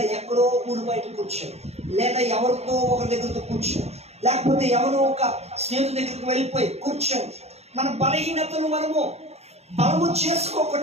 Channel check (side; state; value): left; late; 0.31 ms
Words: ఎక్కడో ఊరు బయట కూర్చొని, లేదా ఎవరితో ఒకరి దగ్గరతో కూర్చొని, లేకపోతే ఎవరో ఒక స్నేహితుడి దగ్గరికి వెళ్ళిపోయి కూర్చొని మన బలహీనతను మనము బలము